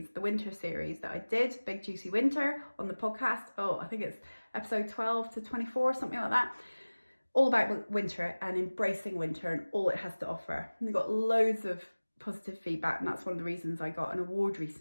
the winter series that I did, Big Juicy Winter, on the podcast. Oh, I think it's episode 12 to 24, something like that. All about winter and embracing winter and all it has to offer. And I got loads of positive feedback, and that's one of the reasons I got an award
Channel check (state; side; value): inverted; both; correlation -1.00